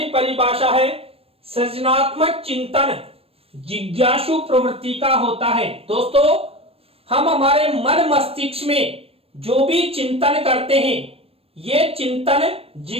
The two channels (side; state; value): left; late; 0.28 ms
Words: परिभाषा है, सृजनात्मक चिंतन जिज्ञासु प्रवृत्ति का होता है। दोस्तों, हम हमारे मन मस्तिष्क में जो भी चिंतन करते हैं, ये चिंतन